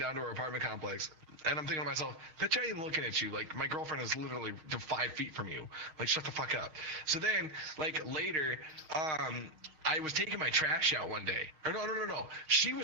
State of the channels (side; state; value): left; late; 6.4 ms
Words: to her apartment complex. And I'm thinking to myself, bitch, I ain't looking at you. Like, my girlfriend is literally 5 feet from you. Like, shut the fuck up. So then, like, later, I was taking my trash out one day. Or no. She